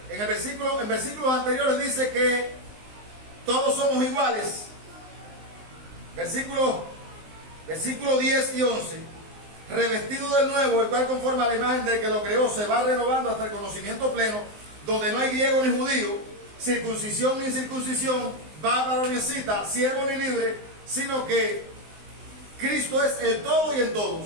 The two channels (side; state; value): left; late; 19 ms